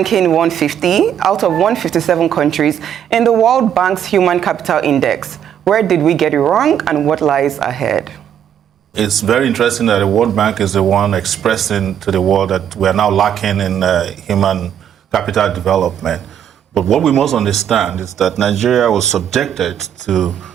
150 out of 157 countries in the World Bank's Human Capital Index. Where did we get it wrong and what lies ahead? It's very interesting that the World Bank is the one expressing to the world that we are now lacking in human capital development. But what we must understand is that Nigeria was subjected to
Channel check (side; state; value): left; quieter; 9.4 dB